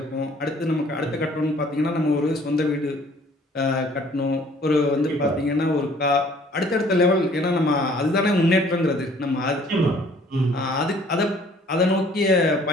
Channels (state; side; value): normal; both; correlation 0.57